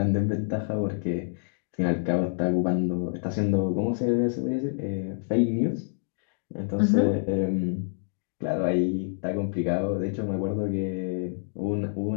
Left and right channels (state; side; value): silent; right; digital silence